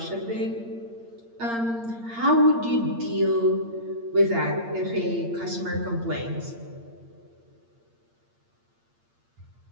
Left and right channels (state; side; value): late; left; 8.7 ms